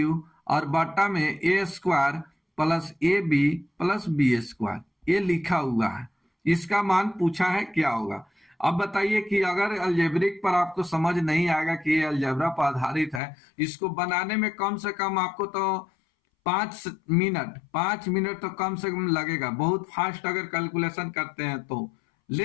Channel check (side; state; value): right; drops out; at 13.2 s